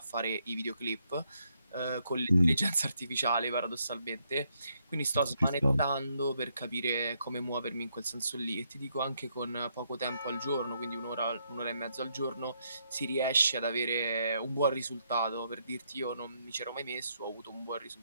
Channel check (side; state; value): both; inverted; correlation -0.76